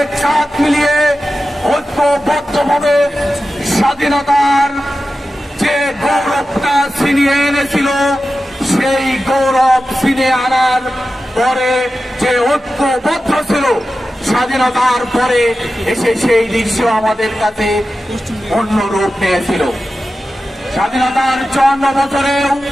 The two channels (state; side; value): normal; both; correlation 0.93